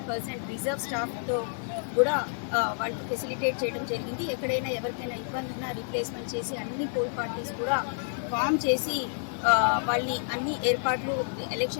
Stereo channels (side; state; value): right; silent; 56 dB below the other